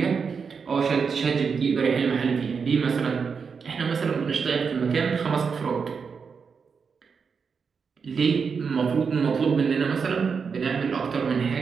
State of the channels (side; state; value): left; quieter; 5.8 dB